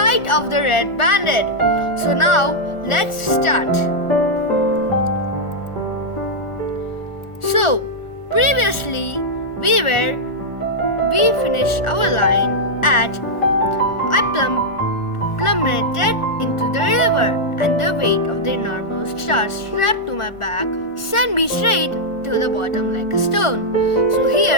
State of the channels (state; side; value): late; right; 1.4 ms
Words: of the Red Bandit. So now let's start. So previously we finished our line at I plummeted into the river, and the weight of the enormous star strapped to my back sent me straight to the bottom like a stone. So